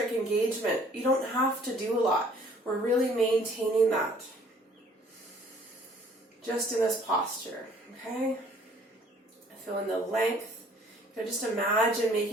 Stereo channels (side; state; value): both; normal; correlation 0.57